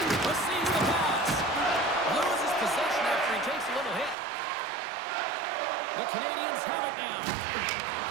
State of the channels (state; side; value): drops out; left; at 4.2 s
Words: Receives the pass. Loses possession after he takes a little hit. The Canadiens have it now.